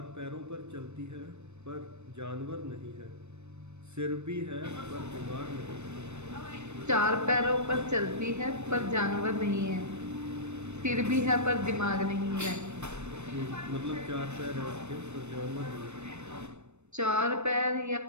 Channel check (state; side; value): late; left; 0.82 ms